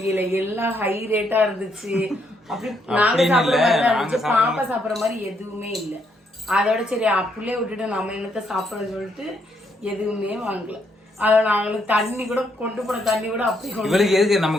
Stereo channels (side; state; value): both; normal; correlation 0.74